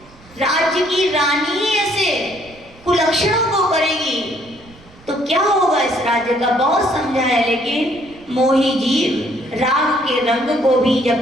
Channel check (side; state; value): right; noise; rumble, 25 dB below the sound